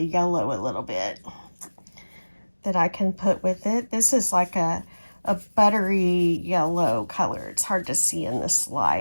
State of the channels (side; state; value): both; inverted; correlation -1.00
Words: yellow a little bit that I can put with it. This is like a buttery yellow color. It's hard to see in this